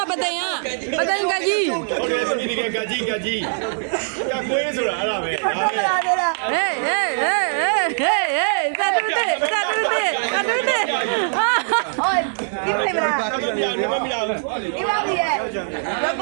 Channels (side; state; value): left; silent; digital silence